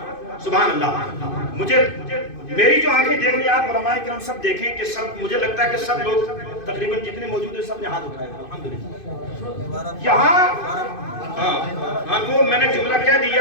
سبحان اللہ۔ میری جو آنکھیں دیکھ رہی ہیں، آپ علماء کرام سب دیکھیں کہ سب، مجھے لگتا ہے کہ سب لوگ تقریباً جتنے موجود ہیں سب نے ہاتھ اٹھائے ہیں، الحمدللہ۔ یہاں ہاں وہ میں نے جملہ کہہ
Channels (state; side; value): late; right; 2.5 ms